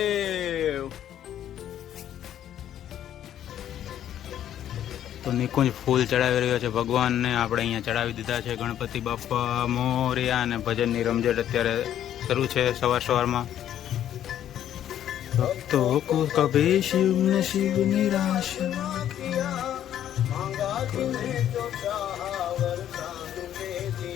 તો નિકુંજ ફૂલ ચડાવી રહ્યો છે ભગવાનને. આપણે અહીંયા ચડાવી દીધા છે ગણપતિ બાપા મોર્યા. અને ભજનની રમઝટ અત્યારે શરૂ છે સવારમાં. ભક્તો કો કભી શિવ ને શિવ નિરાશ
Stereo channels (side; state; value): right; quieter; 10.9 dB